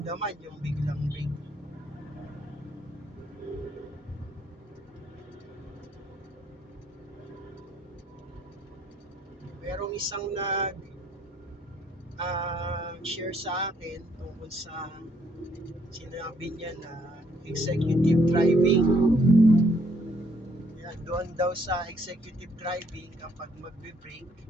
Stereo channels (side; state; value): both; normal; correlation 0.68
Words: yung biglang brake. Merong isang share sa akin tungkol sa sinabi niya na executive driving. Yan, doon daw sa executive driving, kapag magbe-brake,